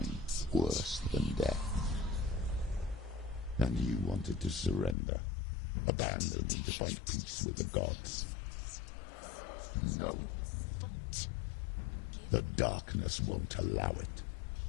worse than death. And you wanted to surrender, abandon and to find peace with the gods. No. The darkness won't allow it.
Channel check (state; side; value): drops out; right; at 5.0 s